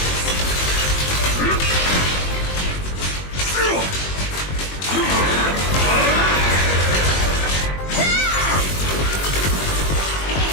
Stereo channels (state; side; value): late; right; 21 ms